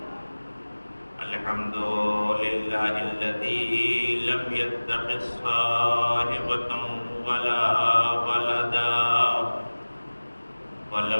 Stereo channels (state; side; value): inverted; both; correlation -1.00